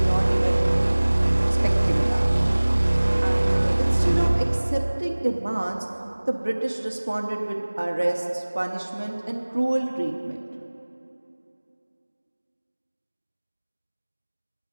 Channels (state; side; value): inverted; both; correlation -1.00